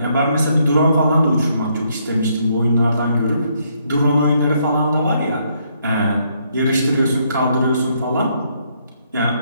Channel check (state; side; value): inverted; both; correlation -0.72